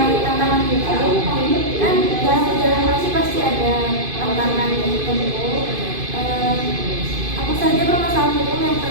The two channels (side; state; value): left; late; 2.5 ms